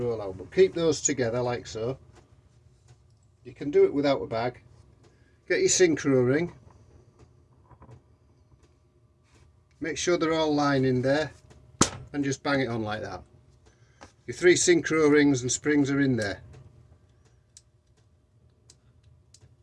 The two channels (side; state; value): both; identical; correlation 1.00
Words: out. But keep those together like so. You can do it without a bag. Get your synchro ring. Make sure they're all lying in there, and just bang it on like that. Your 3 synchro rings and springs are in there.